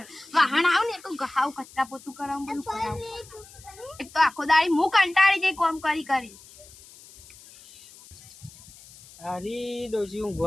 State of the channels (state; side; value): noise; left; hiss, 21 dB below the sound